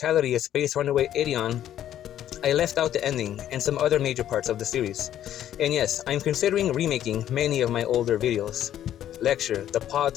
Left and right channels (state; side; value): quieter; right; 11.3 dB